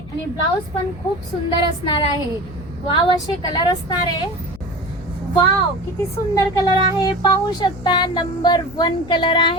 ब्लाउज पण खूप सुंदर असणार आहे. वाव असे कलर असणार आहे. वाव किती सुंदर कलर आहे पाहू शकता. नंबर 1 कलर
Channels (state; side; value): noise; left; hum, 18 dB below the sound